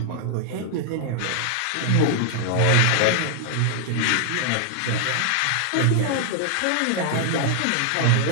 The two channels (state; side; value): different; both; correlation 0.00